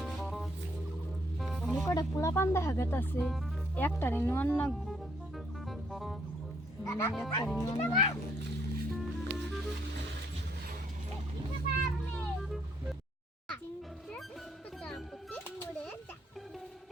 কটা পোলা পান দেখা গেছে, একটারে নোয়ান না একটারে নোয়ান না।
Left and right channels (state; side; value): normal; both; correlation 0.70